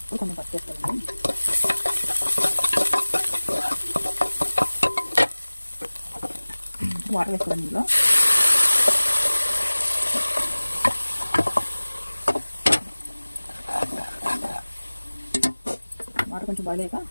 కొంచెం పచ్చి వేసుకోండి. వాటర్ వేసుకోండి. ఇందులో వాటర్ కొంచెం బాయిల్ అయ్యాక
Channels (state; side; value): inverted; both; correlation -1.00